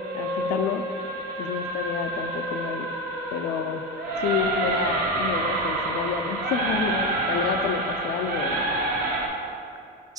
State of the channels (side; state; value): both; normal; correlation 0.14